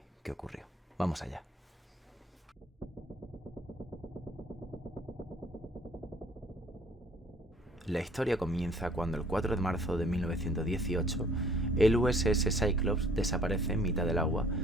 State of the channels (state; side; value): normal; both; correlation 0.56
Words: ocurrió. Vamos allá. La historia comienza cuando el 4 de marzo de 1918 el USS Cyclops desaparece en mitad del agua